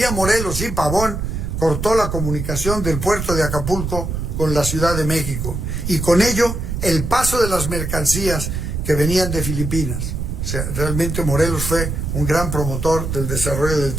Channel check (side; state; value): right; noise; rumble, 3 dB below the sound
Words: Morelos y Pavón cortó la comunicación del puerto de Acapulco con la Ciudad de México, y con ello el paso de las mercancías que venían de Filipinas. O sea, realmente Morelos fue un gran promotor del desarrollo del